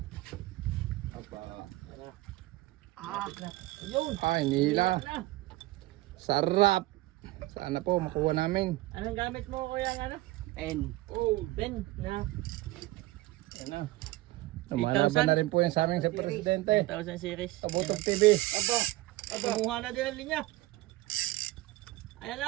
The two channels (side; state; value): left; quieter; 18.8 dB